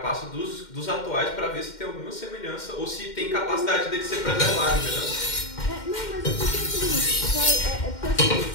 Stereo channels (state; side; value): late; right; 2.1 ms